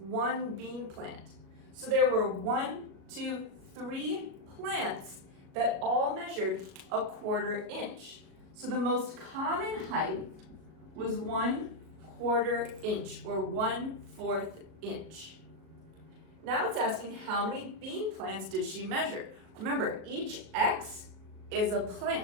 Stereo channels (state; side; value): late; left; 37 ms